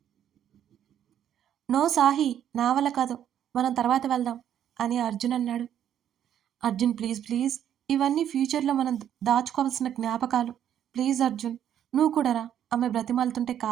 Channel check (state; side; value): quieter; left; 10.1 dB